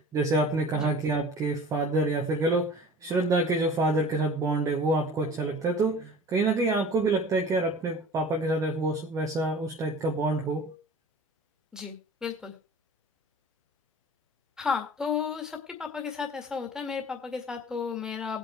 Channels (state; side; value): normal; both; correlation 0.42